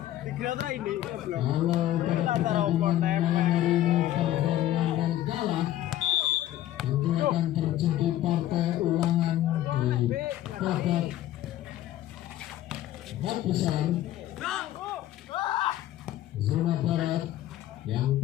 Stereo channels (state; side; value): quieter; right; 13.5 dB